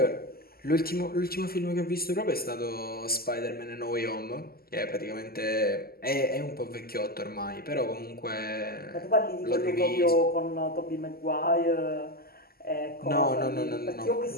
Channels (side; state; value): right; late; 0.44 ms